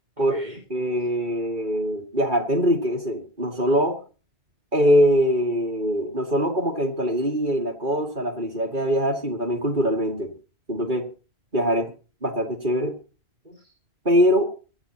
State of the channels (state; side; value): late; left; 2.3 ms